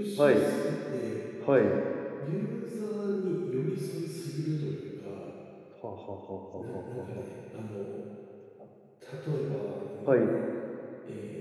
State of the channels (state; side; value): identical; both; correlation 1.00